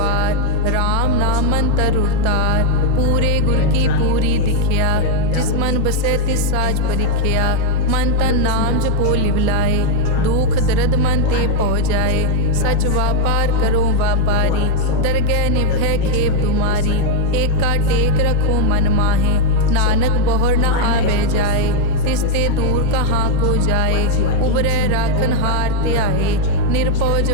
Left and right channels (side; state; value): both; different; correlation 0.00